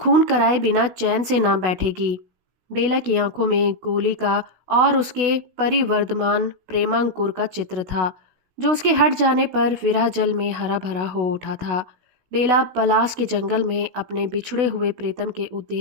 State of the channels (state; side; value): late; left; 16 ms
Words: कराए बिना चैन से ना बैठेगी। बेला की आंखों में गोली का और उसके परिवर्धमान प्रेमांकुर का चित्र था। जो उसके हट जाने पर विरह जल में हरा भरा हो उठा था। बेला पलास के जंगल में अपने बिछड़े हुए प्रीतम के